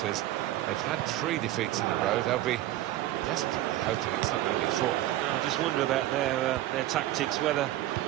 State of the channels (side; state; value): left; quieter; 14.7 dB